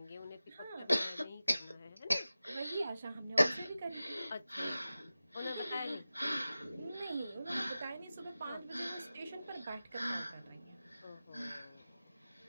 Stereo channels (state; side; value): inverted; both; correlation -0.95